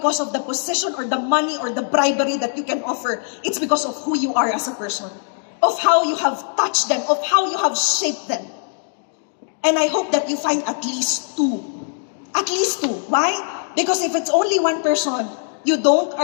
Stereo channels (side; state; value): right; silent; digital silence